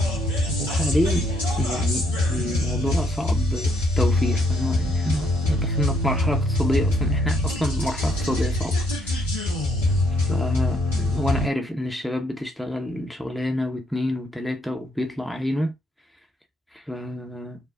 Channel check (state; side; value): normal; both; correlation 0.71